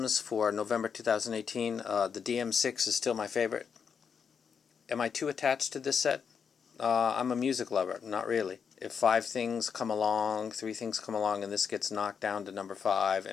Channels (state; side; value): quieter; right; 6.7 dB